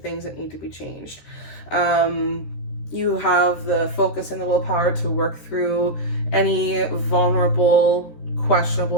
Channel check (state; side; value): late; right; 13 ms